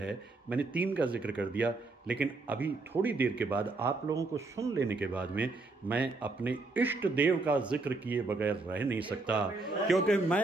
मैंने 3 का जिक्र कर दिया, लेकिन अभी थोड़ी देर के बाद आप लोगों को सुन लेने के बाद में मैं अपने इष्ट देव का जिक्र किए बगैर रह नहीं सकता, क्योंकि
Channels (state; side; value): quieter; left; 3.4 dB